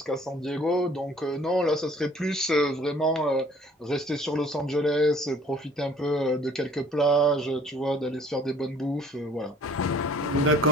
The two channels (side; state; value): both; normal; correlation 0.55